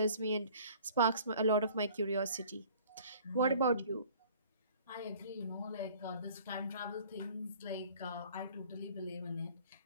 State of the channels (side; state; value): both; inverted; correlation -0.51